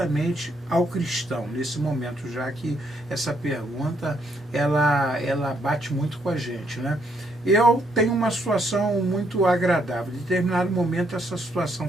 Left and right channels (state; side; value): normal; both; correlation 0.73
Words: ao cristão, nesse momento, já que essa pergunta, ela bate muito com a gente, né? Eu tenho uma situação muito agradável. Em determinado momento, essa situação